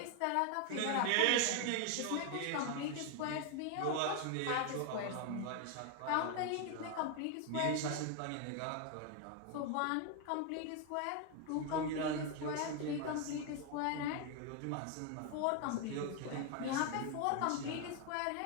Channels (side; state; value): both; different; correlation 0.01